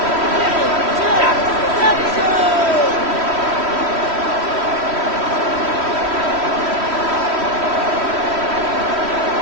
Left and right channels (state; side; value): late; left; 3.1 ms